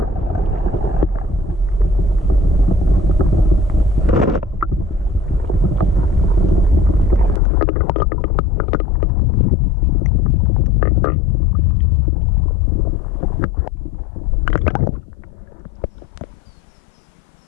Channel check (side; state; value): right; drops out; at 7.4 s